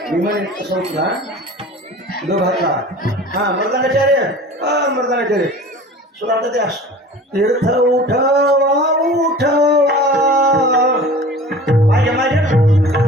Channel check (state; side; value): normal; both; correlation 0.41